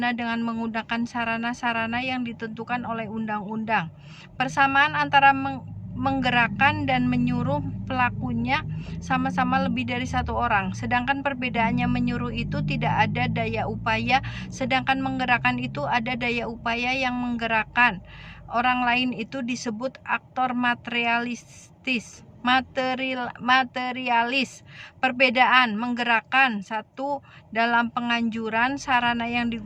dengan menggunakan sarana-sarana yang ditentukan oleh undang-undang. Persamaan antara menggerakkan dan menyuruh pelakunya sama-sama lebih dari satu orang, sedangkan perbedaannya menyuruh itu tidak ada daya upaya, sedangkan menggerakkan itu ada daya upaya yang menggerakkan orang lain. Itu disebut aktor materialis. Perbedaan menggerakkan: satu, dalam penganjuran, sarana yang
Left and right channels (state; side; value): identical; both; correlation 1.00